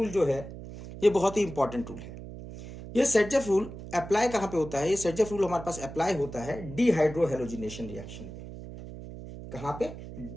जो है ये बहुत ही इंपॉर्टेंट रूल है। ये सेट जेफ रूल अप्लाई कहां पे होता है? ये सेट जेफ रूल हमारे पास अप्लाई होता है डीहाइड्रो हेलोजिनेशन रिएक्शन पे। कहां पे?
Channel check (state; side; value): noise; right; hum, 12 dB below the sound